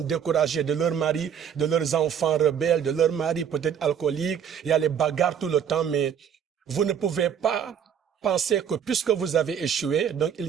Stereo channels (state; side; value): quieter; left; 8.2 dB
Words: de leur mari, de leurs enfants rebelles, de leur mari peut-être alcoolique. Il y a les bagarres tout le temps, mais vous ne pouvez pas penser que puisque vous avez échoué, donc